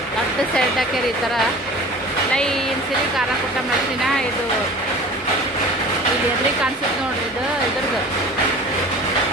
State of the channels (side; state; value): both; normal; correlation 0.41